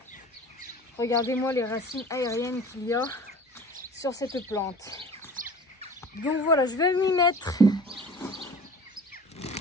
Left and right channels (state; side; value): normal; both; correlation 0.42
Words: Regardez-moi les racines aériennes qu'il y a sur cette plante. Donc voilà, je vais m'y mettre.